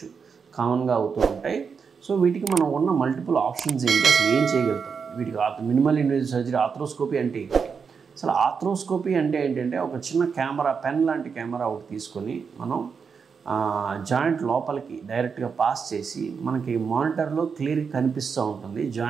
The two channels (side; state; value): left; quieter; 5.9 dB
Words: కామన్గా అవుతూ ఉంటాయి. సో వీటికి మనం ఉన్న మల్టిపుల్ ఆప్షన్స్ ఏంటి, అసలు ఏం చేయగలుగుతాం, వీటికి మినిమల్ ఇన్వేజివ్ సర్జరీ ఆర్థ్రోస్కోపీ అంటే ఏంటి? అసలు ఆర్థ్రోస్కోపీ అంటే ఏంటంటే ఒక చిన్న కెమెరా, పెన్ లాంటి కెమెరా ఒకటి తీసుకొని మనం జాయింట్ లోపలికి డైరెక్ట్గా పాస్ చేసి మనకి మానిటర్లో క్లియర్గా కనిపిస్తూ ఉంటుంది